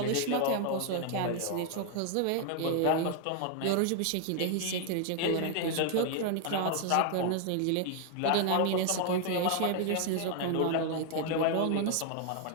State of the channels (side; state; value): both; different; correlation 0.00